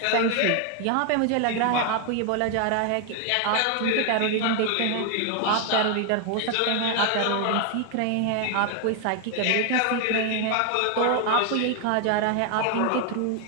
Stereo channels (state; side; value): different; both; correlation 0.00